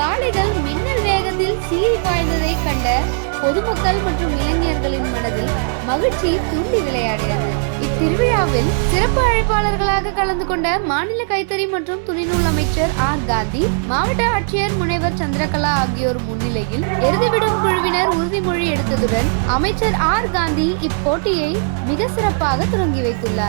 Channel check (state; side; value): silent; left; digital silence